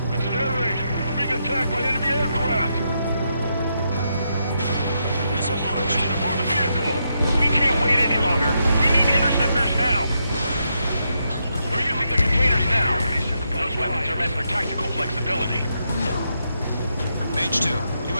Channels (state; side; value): inverted; both; correlation -0.81